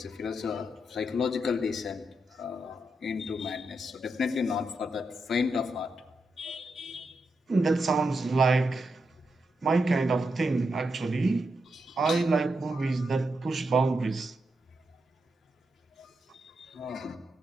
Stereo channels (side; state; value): both; normal; correlation 0.85